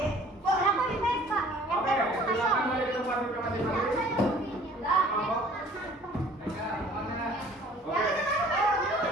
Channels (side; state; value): both; normal; correlation 0.52